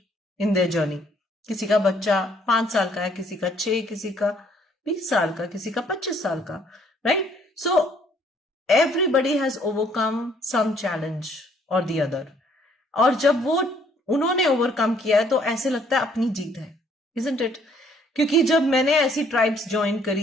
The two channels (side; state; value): both; normal; correlation 0.64